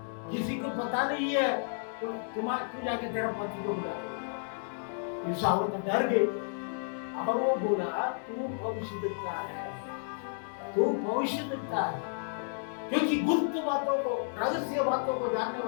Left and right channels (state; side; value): silent; right; digital silence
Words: किसी को पता नहीं है। तो तू जाके तेरा पति को बुला। इस औरत डर गई और वो बोला तू भविष्य देखता है, तू भविष्य देखता है, क्योंकि गुप्त बातों को, रहस्य बातों को जानने